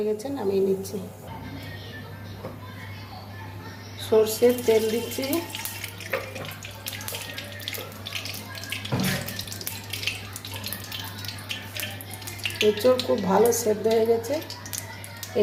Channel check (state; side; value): identical; both; correlation 1.00